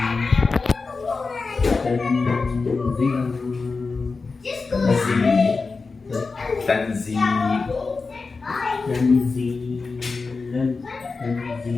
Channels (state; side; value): quieter; right; 4.3 dB